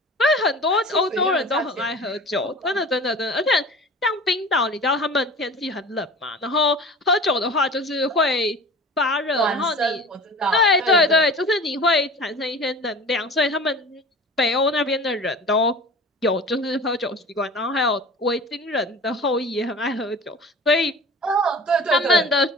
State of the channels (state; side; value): normal; both; correlation 0.39